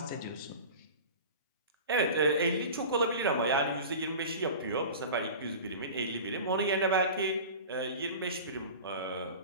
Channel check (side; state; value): both; inverted; correlation -0.35